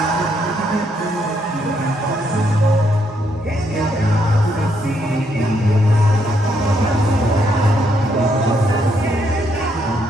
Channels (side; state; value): both; normal; correlation 0.74